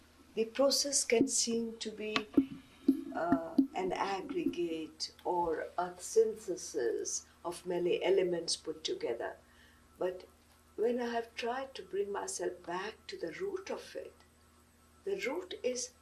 The process can seem to be an aggregate or a synthesis of many elements put together. But when I have tried to bring myself back to the root of it, the root is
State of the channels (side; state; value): both; identical; correlation 1.00